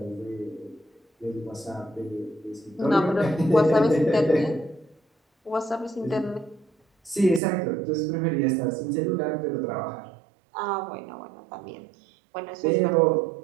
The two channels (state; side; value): drops out; left; at 7.4 s